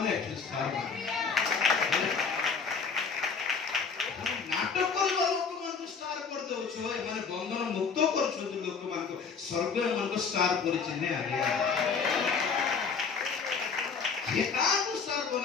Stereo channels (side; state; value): right; quieter; 5.5 dB